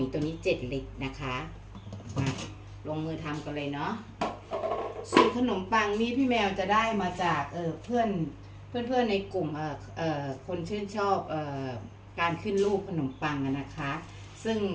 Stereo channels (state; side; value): identical; both; correlation 1.00